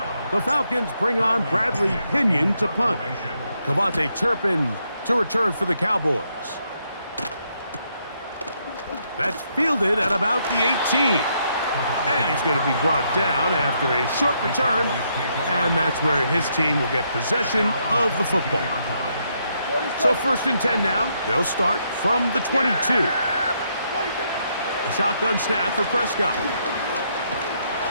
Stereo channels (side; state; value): both; inverted; correlation -0.76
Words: the Falcons bring on Bradley Pinion to punt. Cavante Turpin to return for the Cowboys. That's fielded at about the 18. And he's going to be brought down after a short return. And that's where his team will get possession of the football. So 1st and 10 now. They'll start from the 22. A shotgun snap for Prescott.